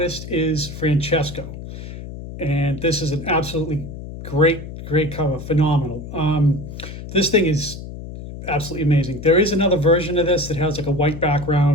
is Francesco. And this is an absolutely great cover. Phenomenal. This thing is absolutely amazing. There is another version of this that has like a white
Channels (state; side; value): noise; left; hum, 11 dB below the sound